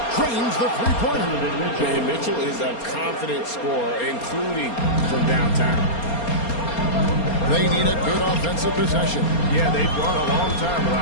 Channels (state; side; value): late; right; 4.3 ms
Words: Trains the three-pointer. And Mitchell is a confident scorer, including from downtown. They need a good offensive possession. Yeah, they've gone a long time